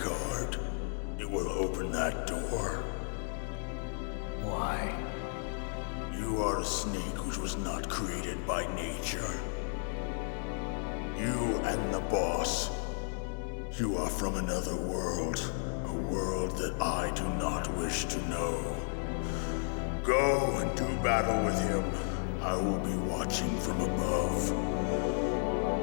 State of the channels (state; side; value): silent; right; digital silence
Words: It will open that door. Why? You are a snake which was not created by nature. You and the boss. You are from another world. A world that I do not wish to know. Go and do battle with him. I will be watching from above.